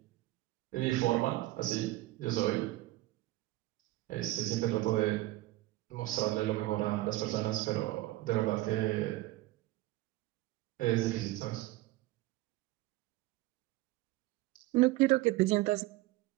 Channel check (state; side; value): quieter; left; 18.1 dB